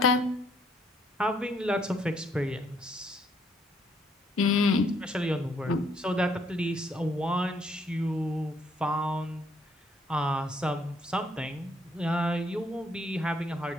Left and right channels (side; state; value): both; normal; correlation 0.68